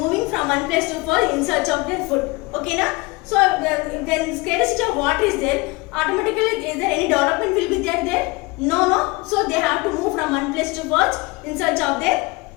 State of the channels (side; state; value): right; quieter; 24.6 dB